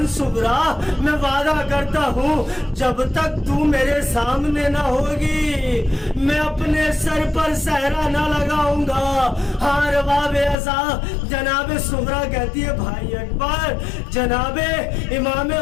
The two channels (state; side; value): drops out; right; at 10.6 s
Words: صغرا میں وعدہ کرتا ہوں جب تک تو میرے سامنے نہ ہوگی میں اپنے سر پر صحرا نہ لگاؤں گا۔ ہار باب ازا جناب صغرا کہتی ہے بھائی اکبر، جناب امام